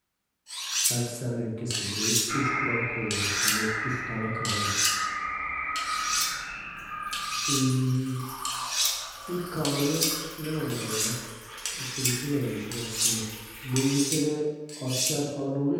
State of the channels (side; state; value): both; identical; correlation 1.00